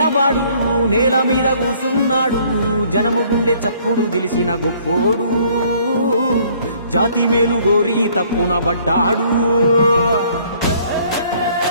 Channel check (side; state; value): both; inverted; correlation -0.60